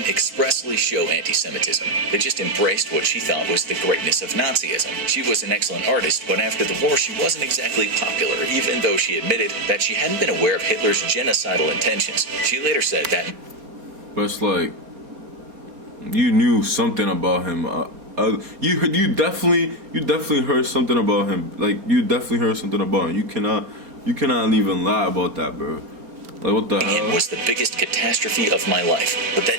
expressly show anti-Semitism. They just embraced what she thought was the greatness of Nazism. She was an excellent artist, but after the war she wasn't exactly popular, even though she admitted that she hadn't been aware of Hitler's genocidal intentions. She later said that... But it's like, you knew something about him. You definitely heard something about him. Like, you definitely heard something about him. You cannot even lie about that, bro. Like, what the hell? It was the biggest catastrophe of my life. But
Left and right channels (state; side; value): late; left; 4.3 ms